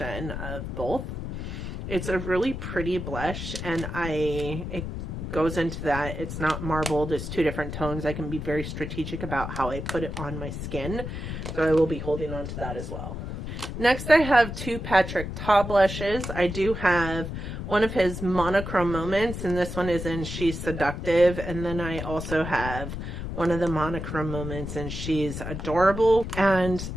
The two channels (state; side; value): noise; left; rumble, 6 dB below the sound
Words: of both. It's a really pretty blush, and it goes into that. It's not marbled. It's 2 different tones. I can be very strategic about how I put it on my skin, so I will be holding on to that as well. Next, I have 2 Patrick Ta blushes. I do have one of his monochrome moments, and this one is in She's Seductive, and then I also have one of the monochrome moments and She's Adorable. And